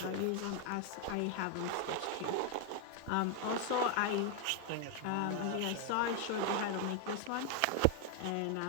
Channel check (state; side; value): different; both; correlation 0.01